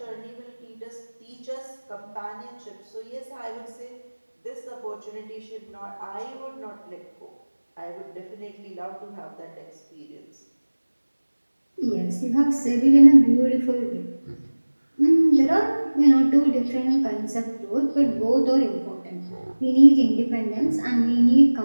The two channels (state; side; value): inverted; both; correlation -1.00